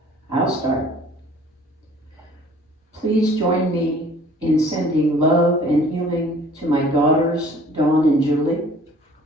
I'll start. Please join me in sending love and healing to my daughters, Dawn and Julie,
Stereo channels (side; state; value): both; normal; correlation 0.52